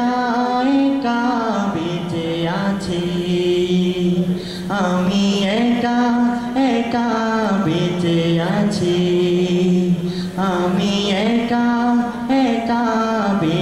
আছি আমি একা একা বেঁচে আছি আমি একা একা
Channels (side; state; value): both; identical; correlation 1.00